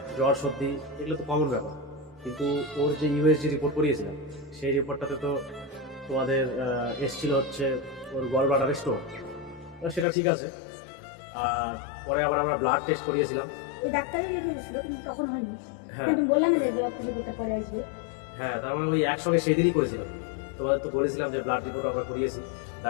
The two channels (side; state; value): right; drops out; at 10.1 s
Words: জ্বর সর্দি এগুলো তো কমন ব্যাপার, কিন্তু ওর যে ইউএসজি রিপোর্ট করিয়েছিলাম, সেই রিপোর্টটাতে তো তোমাদের এসছিল হচ্ছে ওর গল ব্লাডারে স্টোন। সেটা ঠিক আছে। আর পরে আবার আমরা ব্লাড টেস্ট করিয়েছিলাম। ওই ডাক্তারই লিখে দিয়েছিল, কিন্তু তখন হয়নি। হ্যাঁ তুমি বললে না যে রক্ত রিপোর্টটা পরে আসবে। হ্যাঁ, তার মানে ওই একসঙ্গে সেই দিনই করেছিলাম। তোমাদের তো বলেছিলাম যে ব্লাড রিপোর্ট আমরা করিয়েছি,